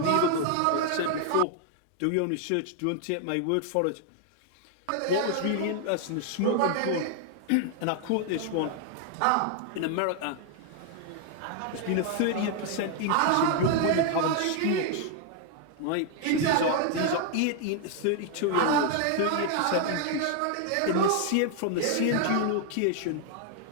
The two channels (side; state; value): both; different; correlation 0.00